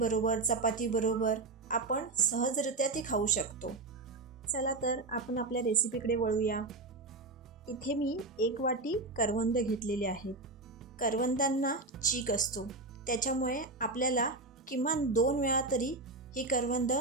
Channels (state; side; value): quieter; left; 3.3 dB